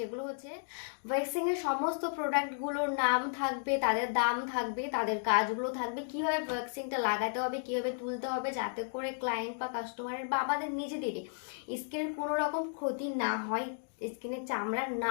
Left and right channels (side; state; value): right; silent; digital silence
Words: হচ্ছে ওয়্যাক্সিং এর সমস্ত প্রোডাক্টগুলোর নাম থাকবে, তাদের দাম থাকবে, তাদের কাজগুলো থাকবে, কিভাবে ওয়্যাক্সিংটা লাগাতে হবে, কিভাবে তুলতে হবে, যাতে করে ক্লায়েন্ট বা কাস্টমারের বা আমাদের নিজেদেরই স্কিনের কোনো রকম ক্ষতি না হয়, স্কিনের চামড়া